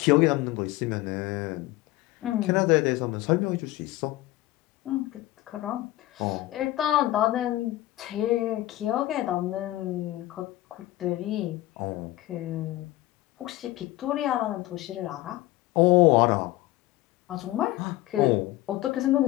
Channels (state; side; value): quieter; right; 16.9 dB